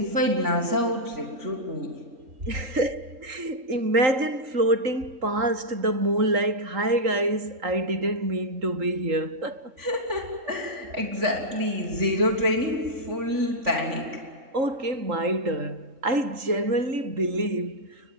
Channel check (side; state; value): left; late; 3.8 ms